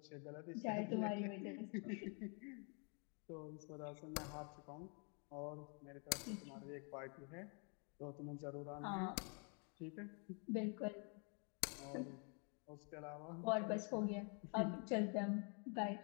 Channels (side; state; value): right; quieter; 38.1 dB